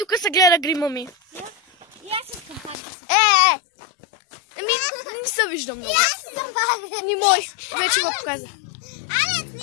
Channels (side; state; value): right; drops out; at 2.8 s